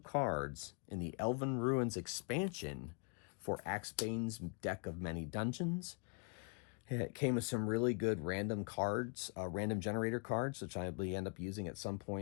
in the Elven Ruins expansion for Axebane's deck of many dungeons. It came with some really good random cards, random generator cards, which I will end up using at some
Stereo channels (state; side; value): quieter; right; 37.0 dB